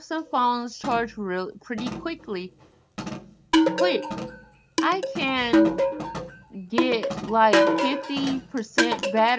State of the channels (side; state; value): both; identical; correlation 1.00